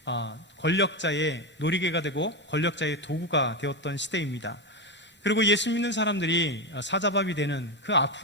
권력자의 놀이개가 되고 권력자의 도구가 되었던 시대입니다. 그리고 예수 믿는 사람들이 사자밥이 되는 그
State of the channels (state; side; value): normal; both; correlation 0.13